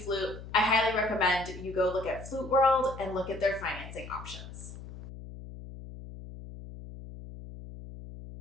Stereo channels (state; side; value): noise; left; hum, 13 dB below the sound